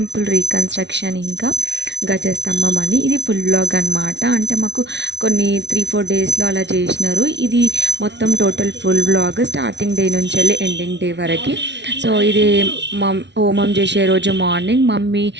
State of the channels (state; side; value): late; left; 0.51 ms